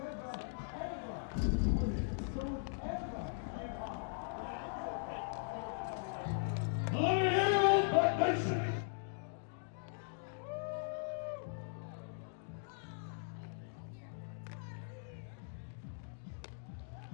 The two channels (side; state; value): right; silent; digital silence